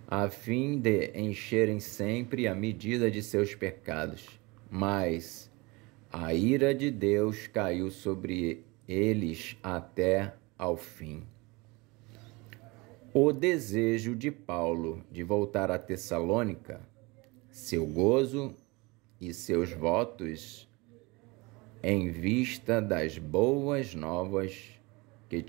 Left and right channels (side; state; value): left; quieter; 25.0 dB